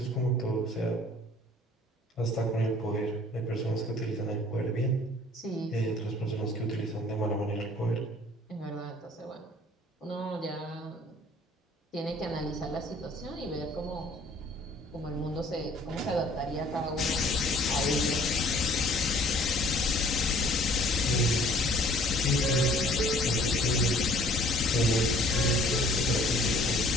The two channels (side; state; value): both; normal; correlation 0.54